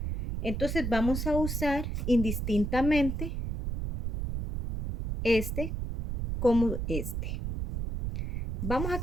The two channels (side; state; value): right; noise; rumble, 3 dB below the sound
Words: Entonces vamos a usar indistintamente este como este. Vamos a